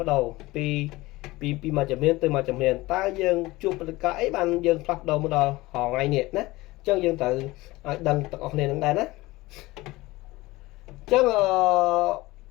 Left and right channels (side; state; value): right; quieter; 20.0 dB